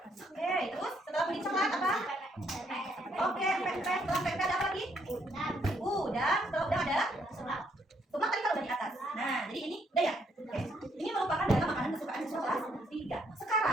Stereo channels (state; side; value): normal; both; correlation 0.72